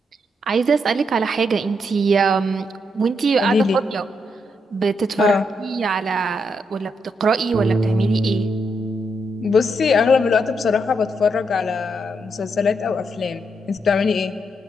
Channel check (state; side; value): normal; both; correlation 0.79